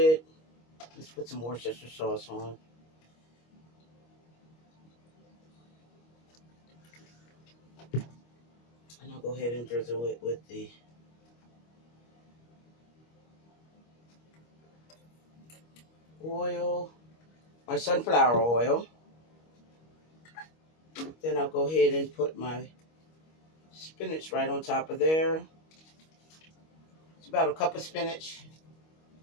Let's put some Worcestershire sauce on. And I'll go ahead and drizzle it with the oil, my sunflower oil. Then I'll go ahead and put my spinach right on top of there. It's about a cup of spinach.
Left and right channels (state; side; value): late; right; 25 ms